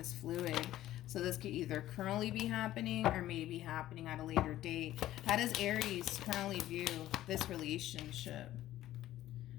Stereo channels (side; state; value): right; quieter; 14.0 dB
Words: fluid. So this could either currently be happening or maybe happening at a later date. How does Aries currently view this relationship?